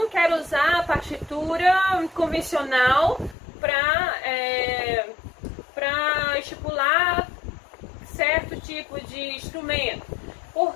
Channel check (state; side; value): drops out; right; at 3.4 s